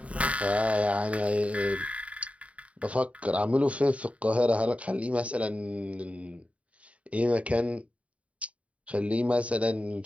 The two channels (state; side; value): late; left; 0.065 ms